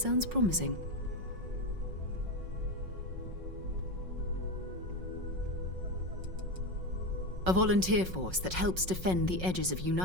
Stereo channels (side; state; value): left; late; 5.5 ms